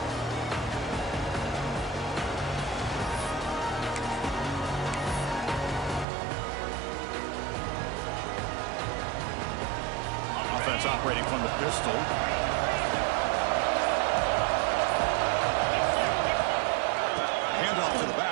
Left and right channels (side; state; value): left; drops out; at 6.1 s